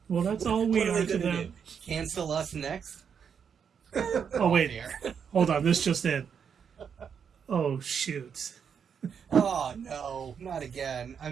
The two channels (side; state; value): left; quieter; 7.1 dB